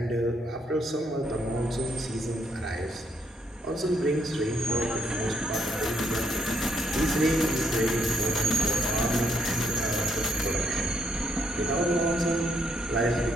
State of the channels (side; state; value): both; normal; correlation 0.72